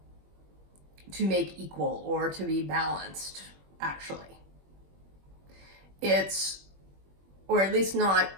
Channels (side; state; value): left; late; 21 ms